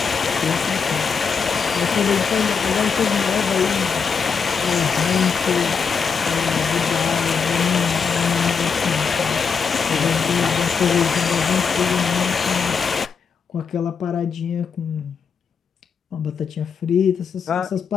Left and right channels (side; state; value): right; quieter; 5.9 dB